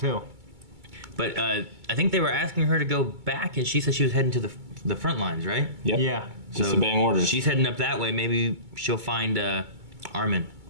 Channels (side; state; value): left; late; 2.2 ms